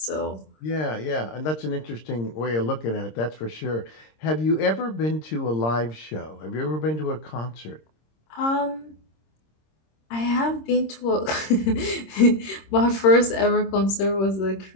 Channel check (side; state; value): right; late; 26 ms